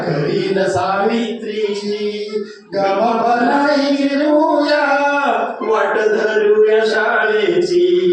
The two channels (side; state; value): both; identical; correlation 1.00